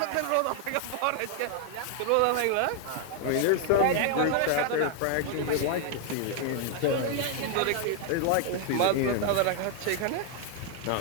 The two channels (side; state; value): both; different; correlation 0.00